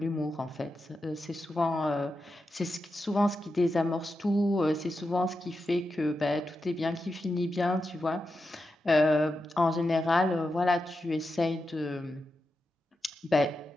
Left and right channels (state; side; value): normal; both; correlation 0.89